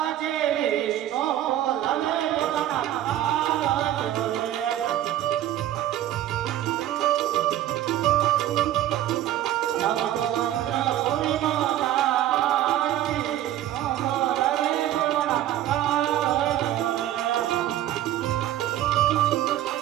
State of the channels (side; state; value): left; quieter; 12.7 dB